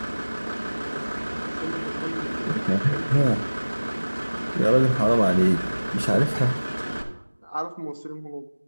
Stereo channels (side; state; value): both; inverted; correlation -1.00